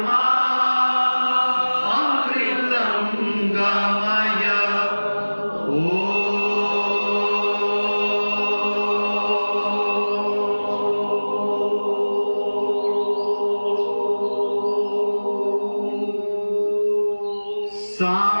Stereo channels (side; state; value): both; inverted; correlation -1.00